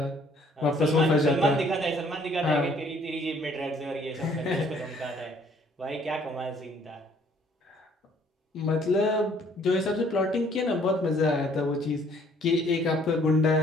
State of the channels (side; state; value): both; normal; correlation 0.61